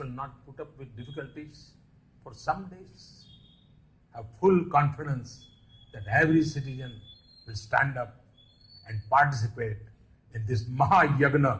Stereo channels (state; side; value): identical; both; correlation 1.00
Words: not put up with difficulties for some days? Have full confidence that every citizen will stand up and participate in this